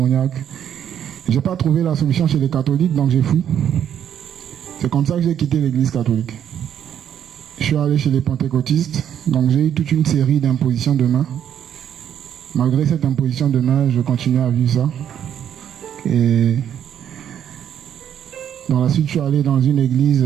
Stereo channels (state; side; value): quieter; left; 9.5 dB